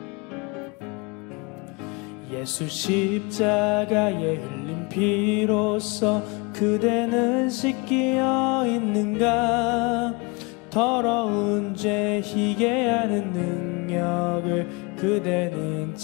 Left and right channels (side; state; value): right; quieter; 28.7 dB